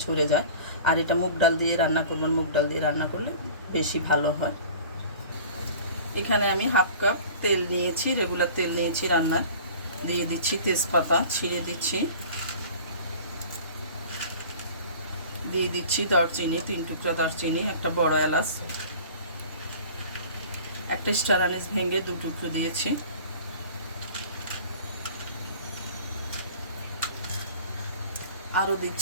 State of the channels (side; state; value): both; inverted; correlation -0.43